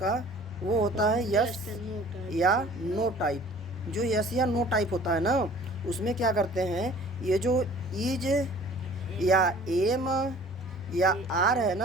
वो होता है यस या नो टाइप। जो यस या नो टाइप होता है ना, उसमें क्या करते हैं, ये जो इज या एम या आर है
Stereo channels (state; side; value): normal; both; correlation 0.49